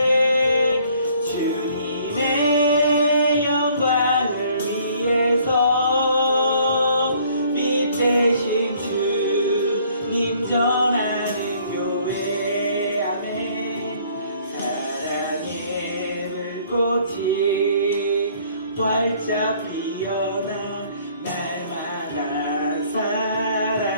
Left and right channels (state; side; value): inverted; both; correlation -0.60